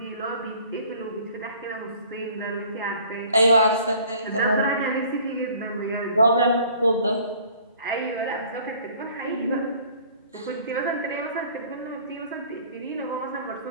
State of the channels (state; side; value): inverted; both; correlation -0.52